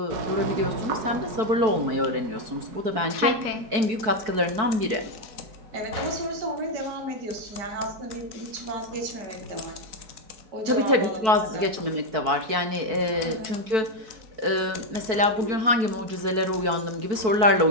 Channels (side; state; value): left; late; 4.6 ms